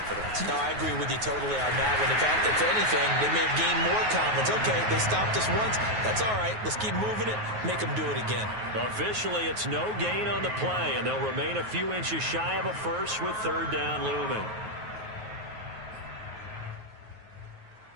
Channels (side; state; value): left; late; 9.4 ms